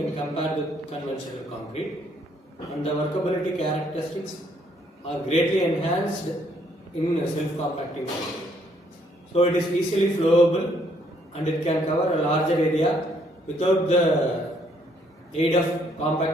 compared with conventional concrete, and the workability characteristics are greatly enhanced in self-compacting concrete. So it is easily flowable and it can cover a larger area without the aid of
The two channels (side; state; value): both; normal; correlation 0.68